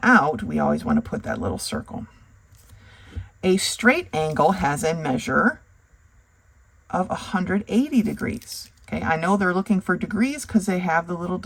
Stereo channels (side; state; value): both; identical; correlation 1.00